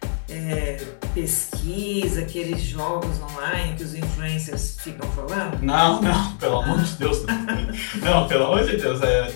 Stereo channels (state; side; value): silent; right; digital silence